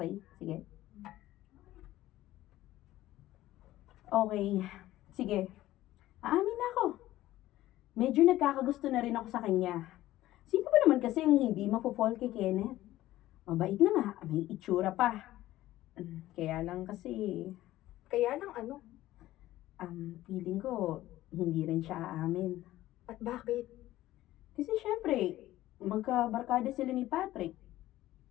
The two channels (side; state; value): right; quieter; 15.3 dB